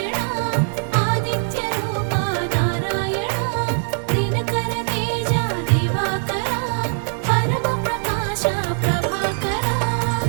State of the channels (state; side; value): silent; left; 65 dB below the other